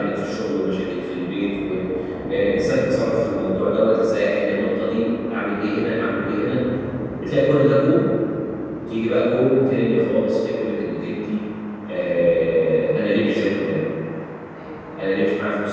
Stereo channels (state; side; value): identical; both; correlation 1.00